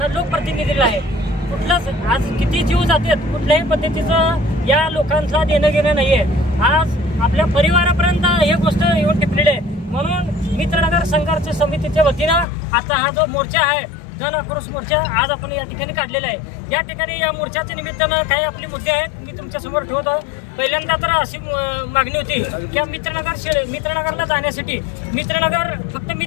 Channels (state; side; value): drops out; right; at 12.5 s